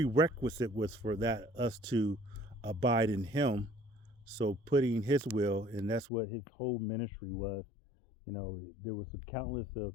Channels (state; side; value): drops out; right; at 6.1 s